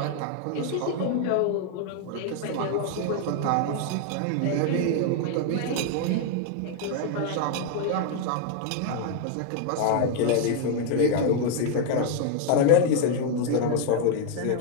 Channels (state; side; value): different; both; correlation 0.00